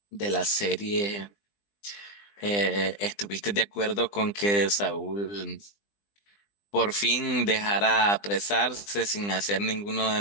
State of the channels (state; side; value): late; right; 20 ms